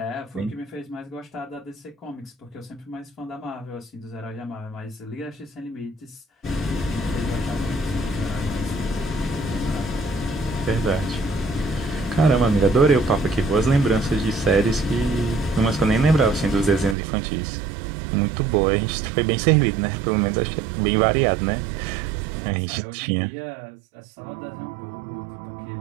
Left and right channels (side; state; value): left; drops out; at 16.9 s